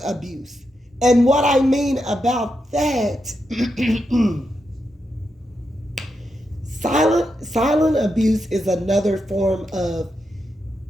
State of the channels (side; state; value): both; normal; correlation 0.85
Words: abuse. And what I mean about that, silent abuse is another form of,